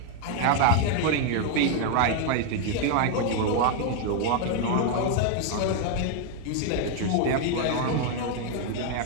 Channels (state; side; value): different; both; correlation 0.00